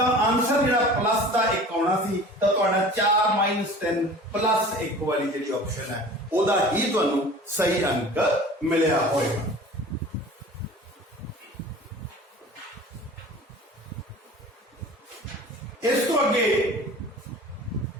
आंसर जो प्लस का 1 आना सी तो 4 - 10 प्लस 1 वाली जी ऑप्शन है वह ही तुहानू सही अंक मिलया होएगा। इस तो अगे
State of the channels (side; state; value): both; normal; correlation 0.42